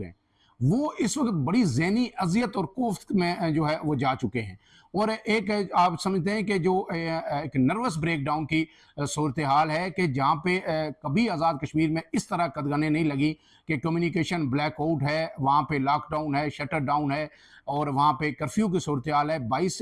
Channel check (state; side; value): identical; both; correlation 1.00